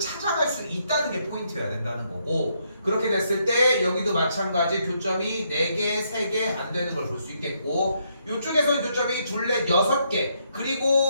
수 있다는 게 포인트여야 된다는 거고, 그렇게 됐을 때 여기도 마찬가지 교점이 4개, 3개 안 되는 걸 볼 수 있겠고, 이쪽에서는 교점이 2, 4, 6개,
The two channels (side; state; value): both; inverted; correlation -0.75